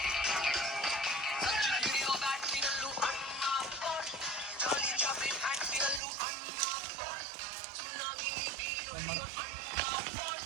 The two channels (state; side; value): drops out; left; at 6.0 s